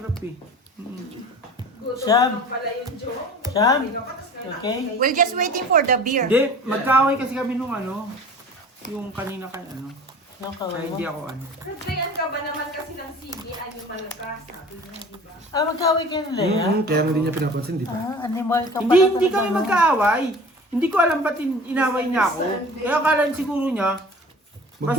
eh. Sham. Sham. Okay. We're just waiting for the beer. Hindi, magkaaway kasi kami nung ano. Yung kanina kay ano. Yung Kaya kaway mo. hindi ako ano. Kagayan ka ba naman kasi ng CD, ano malakas, sabi niya, di ba? Ah, magkaway kayo nila yan? Kaya nga hindi niya pinapansin, di ba? Ah, animal ka pala. Hindi talaga, kami no? magkaaway. Hindi ko alam ba't inaway niya ako. Kaya akala siguro niya,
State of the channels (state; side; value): normal; both; correlation 0.42